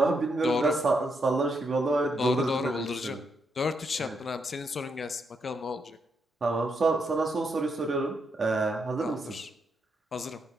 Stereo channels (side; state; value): both; normal; correlation 0.79